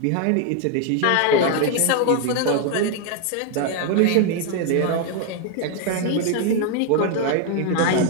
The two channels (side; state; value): both; different; correlation 0.01